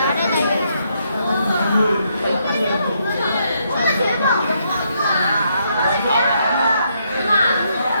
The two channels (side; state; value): both; inverted; correlation -0.75